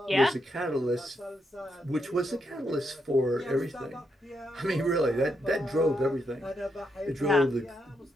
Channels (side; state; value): both; normal; correlation 0.80